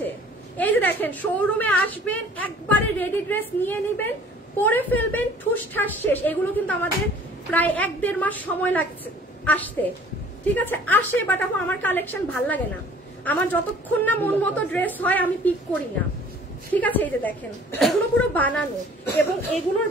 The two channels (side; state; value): both; normal; correlation 0.52